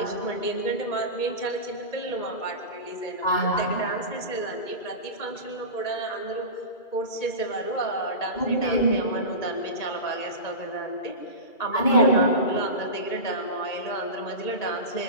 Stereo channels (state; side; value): late; right; 2.3 ms